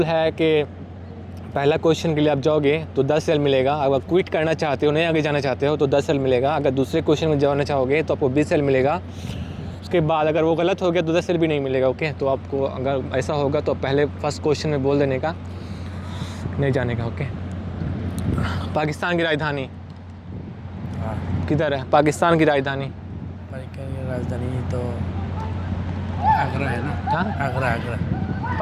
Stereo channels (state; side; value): identical; both; correlation 1.00